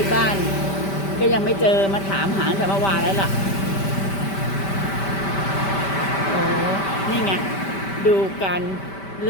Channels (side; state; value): right; late; 5.1 ms